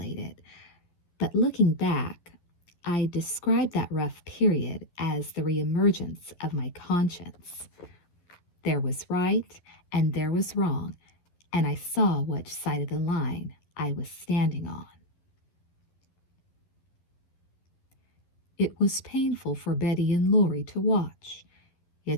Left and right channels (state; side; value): late; right; 11 ms